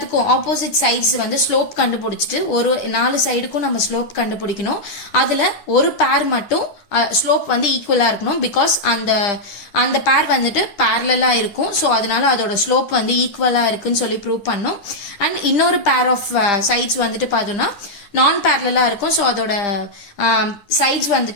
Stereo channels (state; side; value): late; right; 10 ms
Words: ஆப்போசிட் சைட்ஸ் வந்து ஸ்லோப் கண்டுபிடிச்சிட்டு ஒரு 4 சைடுக்கும் நம்ம ஸ்லோப் கண்டுபிடிக்கணும். அதுல ஒரு பேர் மட்டும் ஸ்லோப் வந்து ஈக்குவலா இருக்கணும். பிகாஸ் அந்த பேர் வந்துட்டு பேரலா இருக்கும். ஸோ அதனால அதோட ஸ்லோப் வந்து ஈக்குவலா இருக்குன்னு சொல்லி ப்ரூவ் பண்ணோம். அண்ட் இன்னொரு பேர் ஆஃப் சைட்ஸ் வந்துட்டு பார்த்தோம்னா நான் பேரலா இருக்கும். ஸோ அதோட சைட்ஸ்